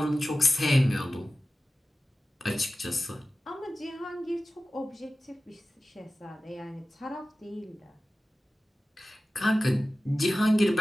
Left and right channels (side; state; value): both; normal; correlation 0.95